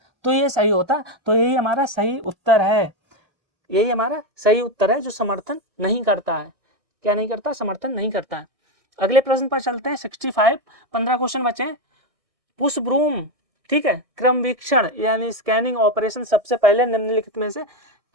तो ये सही होता, तो यही हमारा सही उत्तर है, यही हमारा सही उत्तर है, जो समर्थन नहीं करता है। क्या नहीं करता? समर्थन नहीं करता है। अगले प्रश्न पर चलते हैं, 65, 15 क्वेश्चन बचे हैं। पुश ब्रूम, ठीक है, क्रम वीक्षण यानी स्कैनिंग ऑपरेशन सबसे पहले निम्नलिखित में से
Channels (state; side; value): late; left; 1.6 ms